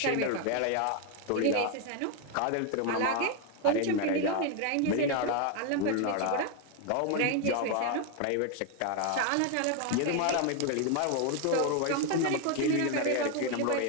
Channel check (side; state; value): both; different; correlation 0.01